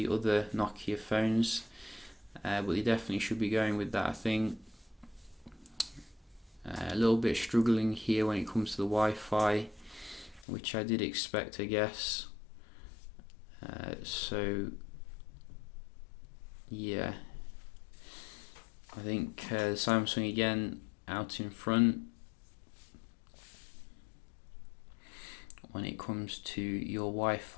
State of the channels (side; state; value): right; drops out; at 10.5 s